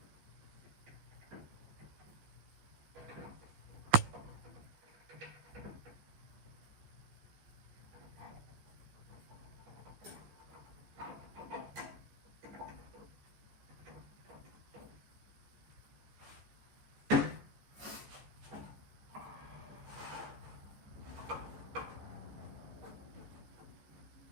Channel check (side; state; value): left; late; 14 ms